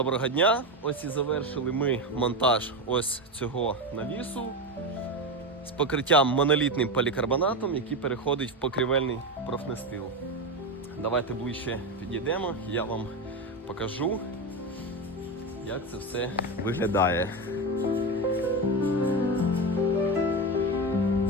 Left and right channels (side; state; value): both; normal; correlation 0.17